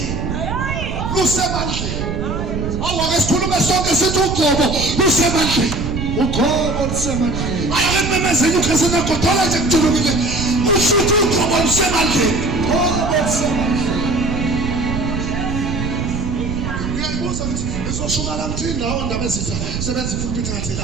Lusemandleni. Awake sikhulume sonke sithi ugcobo lusemandleni. Ugcobo lusemandleni. Ayakememezeni ukhesena godola nje kujulukile. Usithi ugcobo lusemandleni. Ugcobo lusemandleni. Ngiyayibuza ukuthi ngizoshuma la mthi indawo ndaba ezitha sebenza ipulpit ngathi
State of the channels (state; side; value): noise; right; rumble, 4 dB below the sound